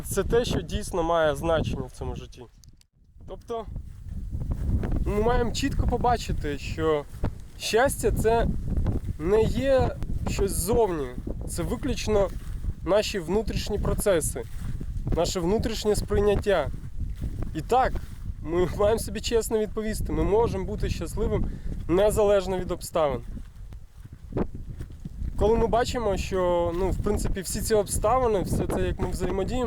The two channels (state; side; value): identical; both; correlation 1.00